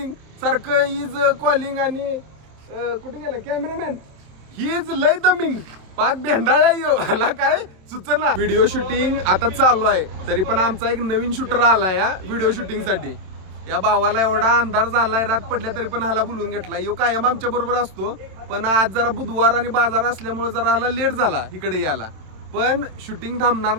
सारखं इज कॉलिंग. आणि कुठे गेला कॅमेरामॅन, ही इज लय दमिंग, पाक भेंडाळा यो ह्याला काय सुचना. व्हिडिओ शूटिंग आता चालू आहे, तरी पण आमचा एक नवीन शूटर आला या व्हिडिओ शूटिंग साठी. या भावाला एवढा अंधार झालाय, रात पडल्या तरी पण ह्याला बोलून घेतला. यो कायम आमच्या बरोबर असतो, पण आज जरा बुधवार आणि बाजार असल्यामुळे जरा ह्याला लेट झाला इकडे यायला. पण शूटिंग थांबणार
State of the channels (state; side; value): late; left; 27 ms